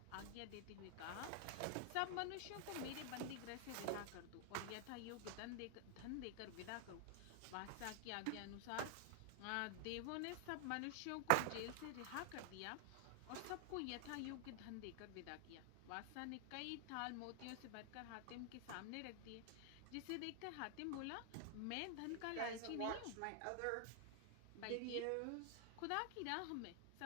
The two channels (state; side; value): different; both; correlation 0.00